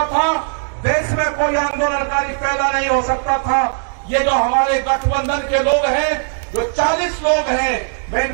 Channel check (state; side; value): silent; left; digital silence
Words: था, देश में कोई आंदोलनकारी पैदा नहीं हो सकता था। ये जो हमारे गठबंधन के लोग हैं, जो 40 लोग हैं, मैं